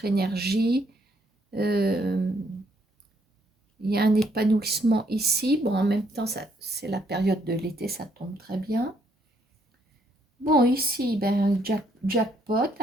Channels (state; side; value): normal; both; correlation 0.70